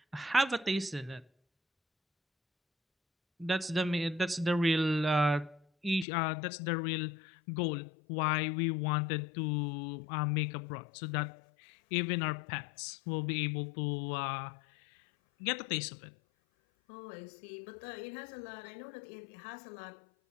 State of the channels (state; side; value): drops out; right; at 6.1 s